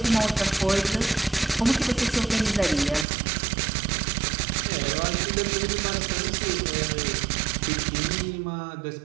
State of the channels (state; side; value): drops out; left; at 3.1 s